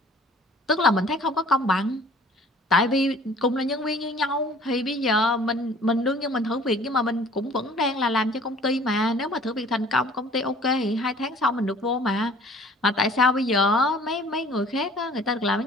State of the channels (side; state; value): both; normal; correlation 0.52